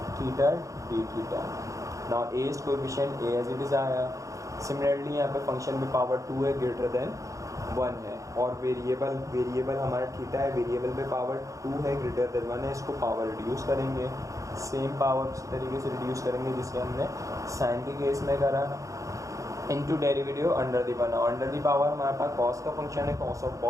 theta d theta. Now a is coefficient, a as it is आया। सिमिलरली यहाँ पे फंक्शन में पावर 2 है, ग्रेटर देन 1 है, और वेरिएबल हमारा थीटा है, वेरिएबल पे पावर 2 है, ग्रेटर देन 1 है। इसको पावर रिड्यूस करेंगे, सेम पावर उसी तरीके से रिड्यूस करेंगे जिससे हमने साइन के केस में करा, into derivative under the power. Under the power हमारे पास कॉस का फंक्शन है, कॉस ऑफ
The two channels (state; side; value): late; left; 0.16 ms